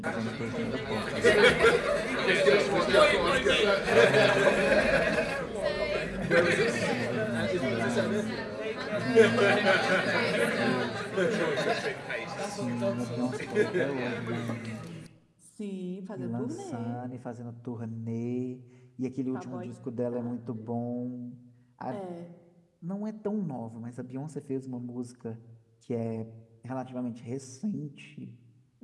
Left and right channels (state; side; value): identical; both; correlation 1.00